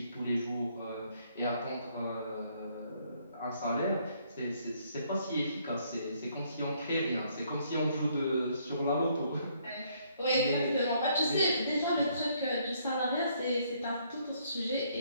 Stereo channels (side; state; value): both; inverted; correlation -0.68